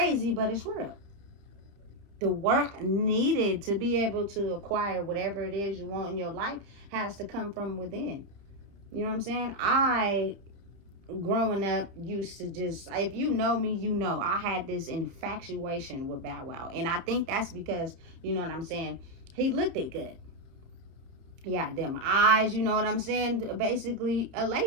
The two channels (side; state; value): left; late; 30 ms